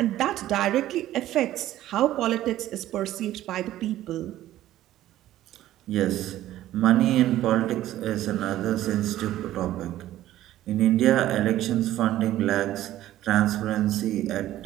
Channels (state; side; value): quieter; left; 13.9 dB